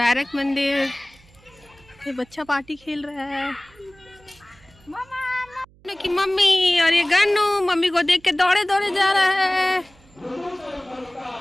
मंदिर, ये बच्चा पार्टी खेल रहा है की मम्मी। और ये गन्नू मम्मी को देख के दौड़े दौड़े जा रहा है।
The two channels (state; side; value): noise; right; hum, 28 dB below the sound